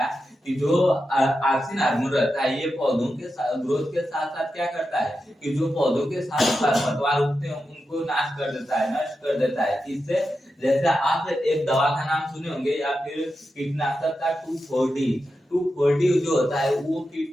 कि जो ऑक्सीजन हार्मोन रहता है ये पौधों के ग्रोथ के साथ साथ क्या करता है कि जो पौधों के साथ खरपतवार उगते हैं उनको नाश कर देता है, नष्ट कर देता है। इससे जैसे आप एक दवा का नाम सुने होंगे या फिर कीटनाशक का 2,4-D जो होता है वो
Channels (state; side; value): normal; both; correlation 0.89